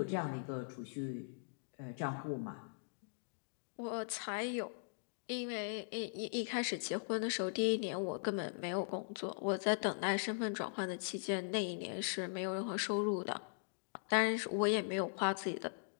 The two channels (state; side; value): silent; right; digital silence